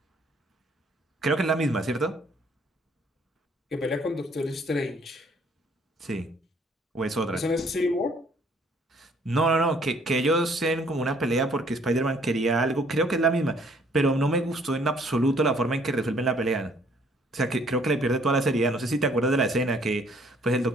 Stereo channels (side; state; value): both; normal; correlation 0.62